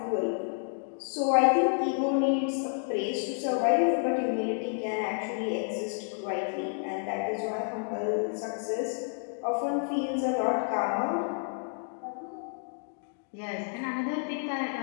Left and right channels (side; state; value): right; silent; 58 dB below the other